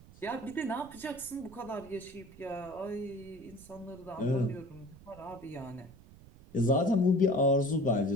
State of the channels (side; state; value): right; noise; rumble, 21 dB below the sound